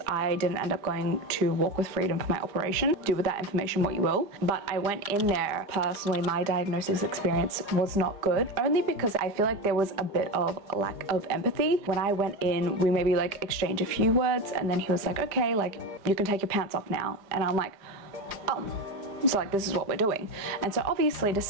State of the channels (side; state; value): left; late; 4.9 ms